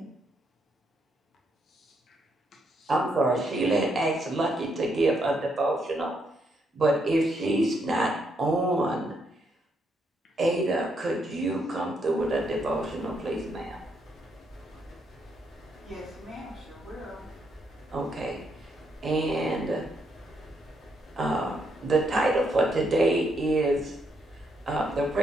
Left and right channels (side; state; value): both; normal; correlation 0.76